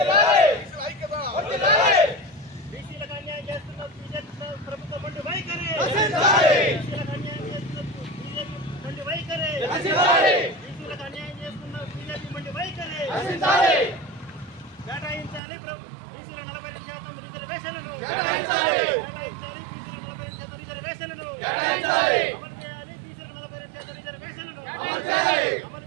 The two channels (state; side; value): drops out; left; at 15.4 s